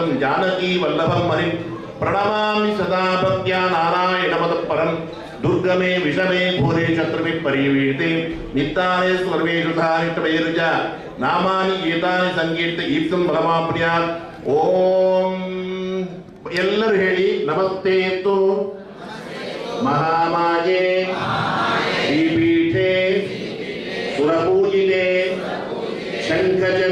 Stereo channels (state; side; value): identical; both; correlation 1.00